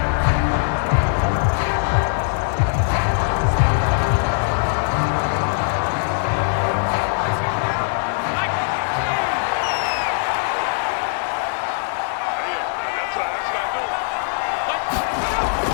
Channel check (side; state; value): right; silent; digital silence